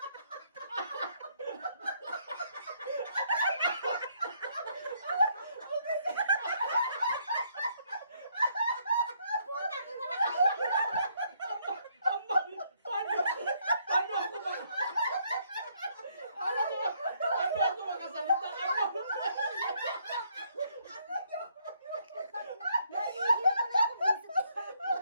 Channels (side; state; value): both; inverted; correlation -0.70